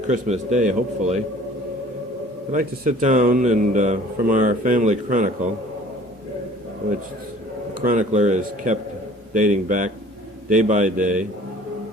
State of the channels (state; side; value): normal; both; correlation 0.50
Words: Christmas Day, hopefully, I'd like to sit down and, from our family chronicle, which the chronicler is kept dating back day by day